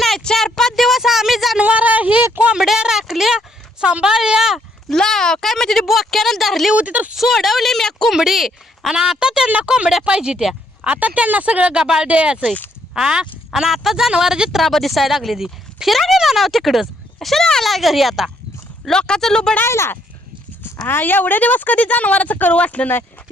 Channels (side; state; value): both; normal; correlation 0.70